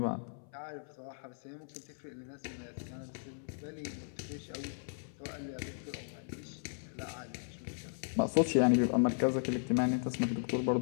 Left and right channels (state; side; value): silent; right; 54 dB below the other